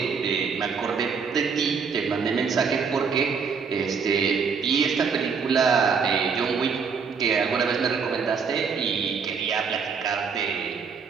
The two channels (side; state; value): left; quieter; 5.7 dB